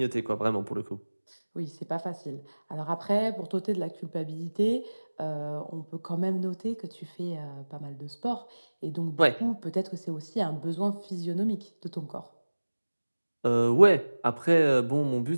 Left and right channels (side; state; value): both; inverted; correlation -1.00